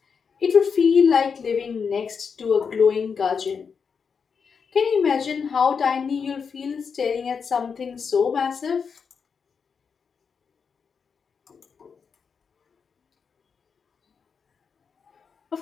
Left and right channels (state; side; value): quieter; right; 6.0 dB